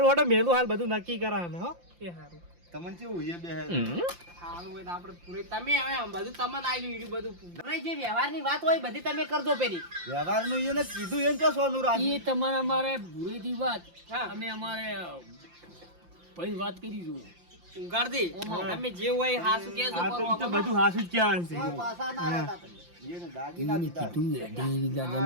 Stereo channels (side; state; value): left; late; 5.8 ms